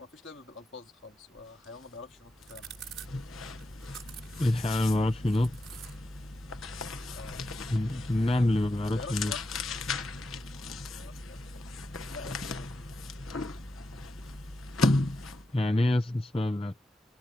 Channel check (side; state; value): both; normal; correlation 0.87